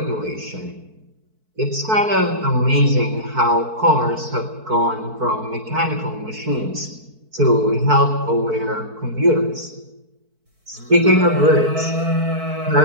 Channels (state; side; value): late; left; 4.5 ms